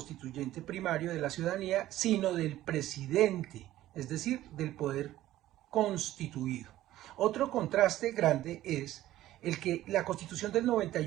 primario de la ciudadanía, sino del presidente, es decir, del poder constituido. Otro contraste grande es el que la Constitución del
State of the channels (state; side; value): quieter; left; 14.5 dB